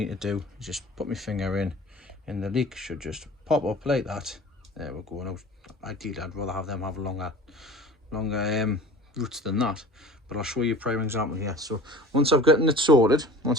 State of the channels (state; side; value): normal; both; correlation 0.41